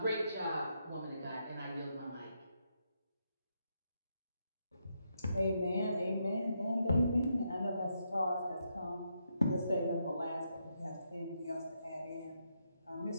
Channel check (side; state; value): both; inverted; correlation -0.80